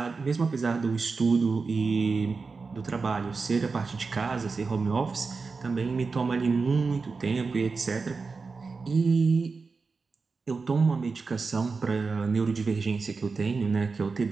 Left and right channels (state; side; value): quieter; left; 4.5 dB